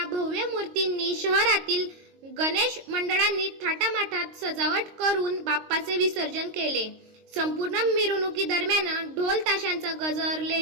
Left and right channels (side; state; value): left; late; 22 ms